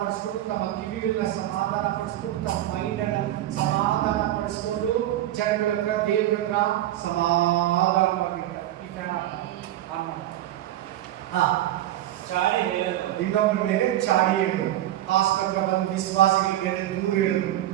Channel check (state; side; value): quieter; left; 13.7 dB